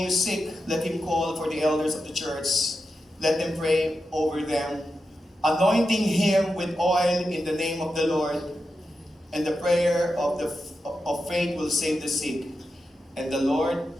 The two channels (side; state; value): both; normal; correlation 0.89